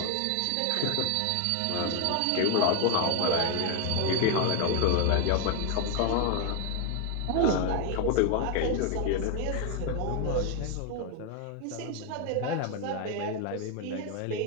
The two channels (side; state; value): both; different; correlation 0.01